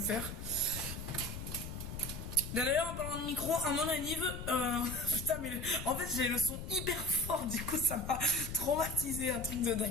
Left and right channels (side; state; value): left; noise; rumble, 8 dB below the sound